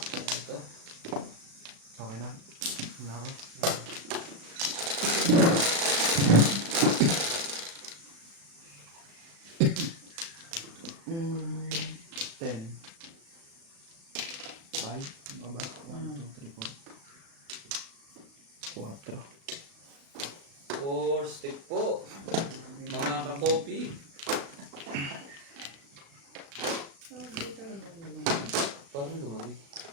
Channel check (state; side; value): late; left; 36 ms